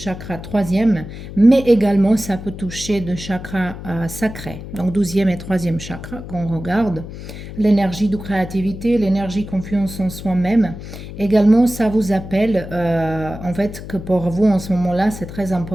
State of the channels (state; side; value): noise; left; hum, 11 dB below the sound